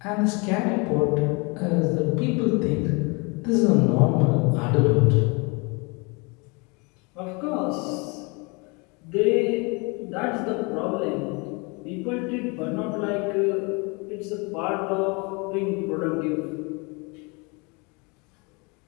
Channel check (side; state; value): right; quieter; 29.9 dB